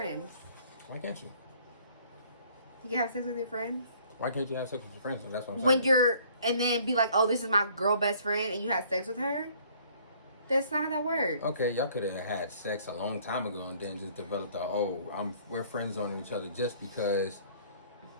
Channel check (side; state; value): both; inverted; correlation -0.58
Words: Why can't you? You can have sex with your friends Why can't you have sex with your friends? That's what I'm when saying. and then be like, oh, this is my girl best friend, and you have sex with her. That's not how that works. Okay, y'all could have had sex a long time ago and then just developed we're friends on each other just because